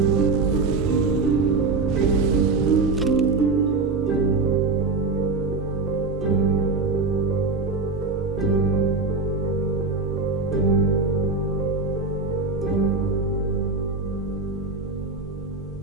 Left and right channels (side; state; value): left; quieter; 3.9 dB